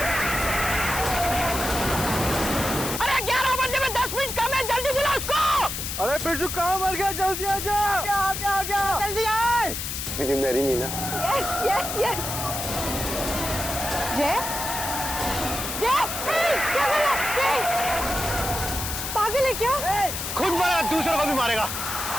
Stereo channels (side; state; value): left; noise; hiss, 4 dB below the sound